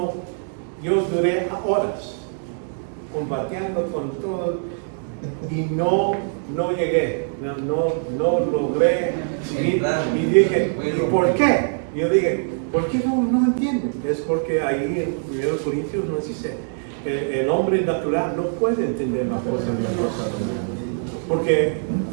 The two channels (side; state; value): left; silent; digital silence